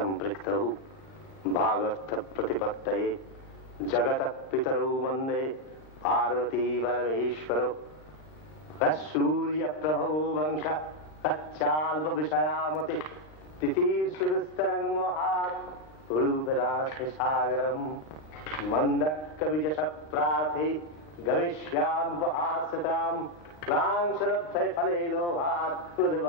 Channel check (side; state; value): right; late; 39 ms